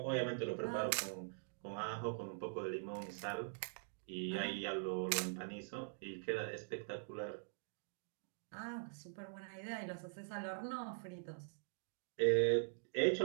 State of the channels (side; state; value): left; silent; digital silence